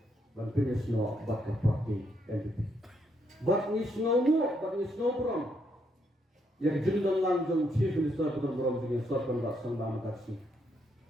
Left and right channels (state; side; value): normal; both; correlation 0.76